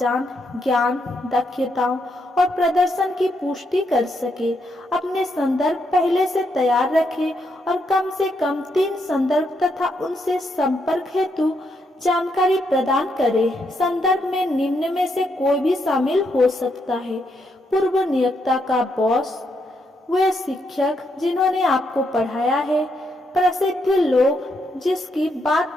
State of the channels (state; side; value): normal; both; correlation 0.78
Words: ज्ञान, दक्षताओं और प्रदर्शन की पुष्टि कर सके। अपने संदर्भ पहले से तैयार रखें और कम से कम 3 संदर्भ तथा उनसे संपर्क हेतु जानकारी प्रदान करें। संदर्भ में निम्न में से कोई भी शामिल हो सकता है: पूर्व नियोक्ता का बॉस, वे शिक्षक जिन्होंने आपको पढ़ाया है, प्रसिद्ध लोग जिसकी बात